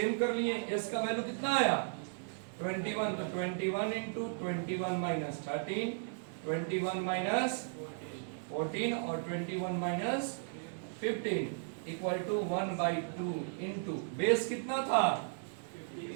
कर लिए। S का वैल्यू कितना आया 21, तो 21 इंटू 21 माइनस 13, 21 माइनस 14 और 21 minus 15 equal to 1/2 into base कितना था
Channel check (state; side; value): silent; left; 54 dB below the other